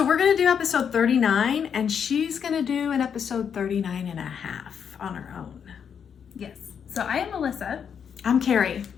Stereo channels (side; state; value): right; quieter; 7.5 dB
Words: we're going to do episode 39 and she's going to do an episode 39 and a half on her own. Yes. So I am Melissa. I'm Carrie.